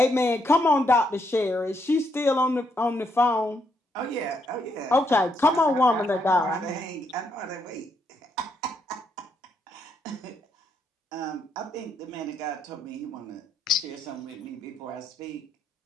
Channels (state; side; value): normal; both; correlation 0.76